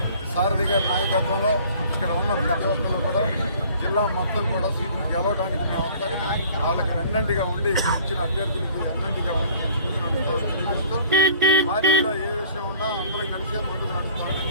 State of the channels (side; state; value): both; inverted; correlation -0.51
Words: సారథి గారి నాయకత్వంలో ఇక్కడ ఉన్న ప్రతి ఒక్కరు కూడా జిల్లా మొత్తం కూడా సీట్లు గెలవడానికి మేము వాళ్ళకి వెన్నంటిగా ఉండి ఇచ్చిన అభ్యర్థులకి వెన్నంటిగా ఉండి పార్టీలో ఏ విషయం ఉన్నా అందరం కలిసే ముందుకు